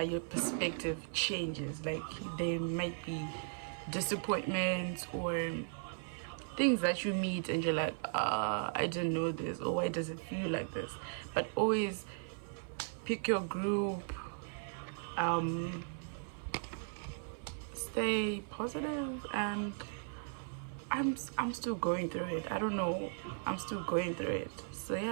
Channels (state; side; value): silent; left; 53 dB below the other